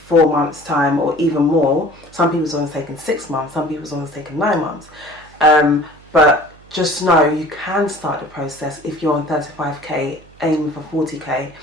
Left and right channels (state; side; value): noise; right; hum, 25 dB below the sound